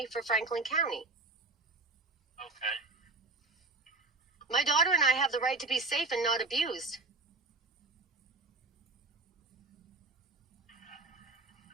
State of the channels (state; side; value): quieter; left; 3.5 dB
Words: for Franklin County. Okay. My daughter and I have the right to be safe and not abused.